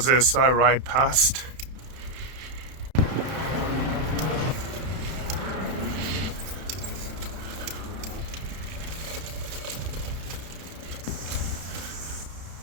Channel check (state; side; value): late; left; 31 ms